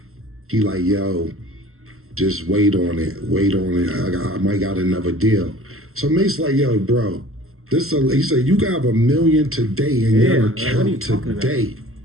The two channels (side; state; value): left; late; 0.62 ms